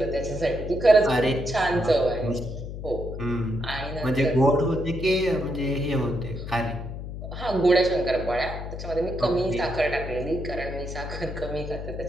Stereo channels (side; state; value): left; noise; hum, 8 dB below the sound